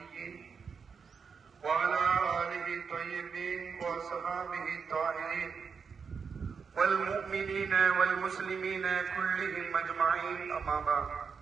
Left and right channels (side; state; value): left; quieter; 5.9 dB